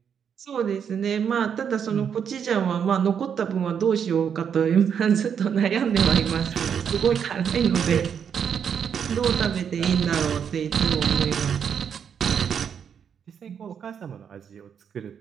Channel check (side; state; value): left; quieter; 7.6 dB